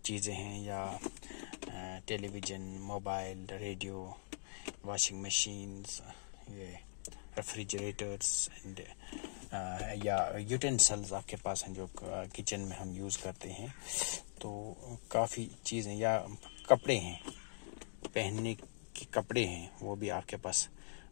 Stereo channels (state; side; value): silent; right; digital silence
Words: हैं, या television, mobile, radio, washing machines, ये रेफ्रिजरेटर्स एंड या यूटेंसिल्स आपके पास हैं जो किचन में हम यूज़ करते हैं। तो काफ़ी चीज़ें, या कपड़े हैं, पहनने के कपड़े हैं, वो भी आपके पास